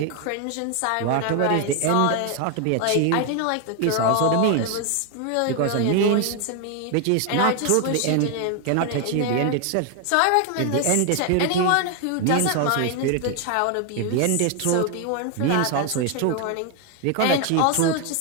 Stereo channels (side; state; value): both; different; correlation 0.01